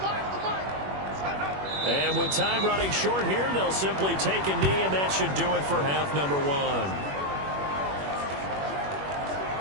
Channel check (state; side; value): late; left; 21 ms